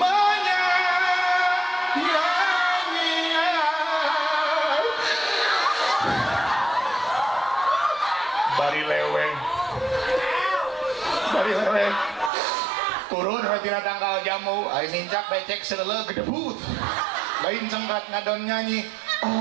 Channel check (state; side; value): drops out; left; at 12.3 s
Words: turun tina tanggal jamu, ay nincak becek selele gedebut, lain cengkat ngadon nyanyi.